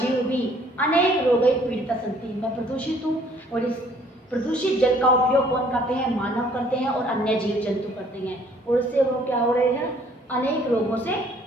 भी अनेक रोगै पीड़िता सन्ति, मैं प्रदूषित हूँ और इस प्रदूषित जल का उपयोग कौन करते हैं, मानव करते हैं और अन्य जीव जंतु करते हैं और इससे वो क्या हो रहे हैं, अनेक रोगों से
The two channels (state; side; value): normal; both; correlation 0.60